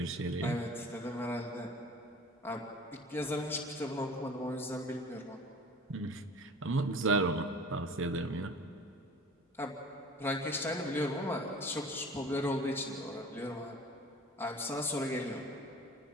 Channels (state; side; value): normal; both; correlation 0.43